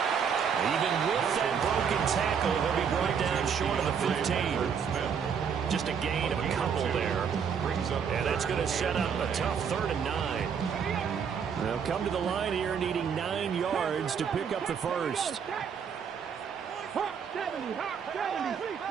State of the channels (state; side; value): quieter; left; 7.0 dB